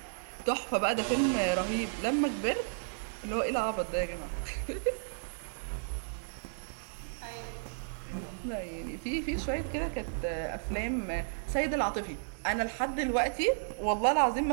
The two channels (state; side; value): silent; left; digital silence